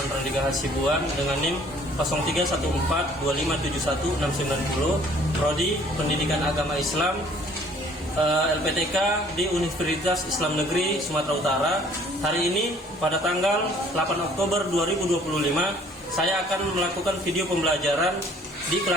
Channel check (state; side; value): normal; both; correlation 0.56